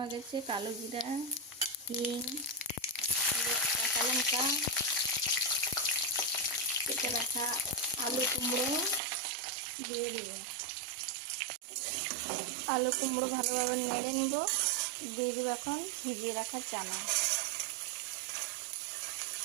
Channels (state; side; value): drops out; left; at 9.0 s